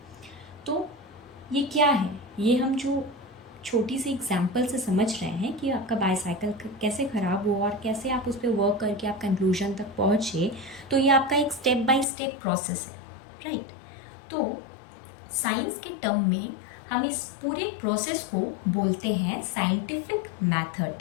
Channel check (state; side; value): drops out; right; at 12.1 s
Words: तो ये क्या है, ये हम जो छोटी सी एग्जाम्पल से समझ रहे हैं कि आपका बाईसाइकिल कैसे ख़राब हुआ और कैसे आप उस पर वर्क करके आप कंक्लूजन तक पहुँचे। तो ये आपका एक स्टेप बाय स्टेप प्रोसेस है, राइट। तो साइंस के टर्म में हम इस पूरे प्रोसेस को बोलते हैं साइंटिफिक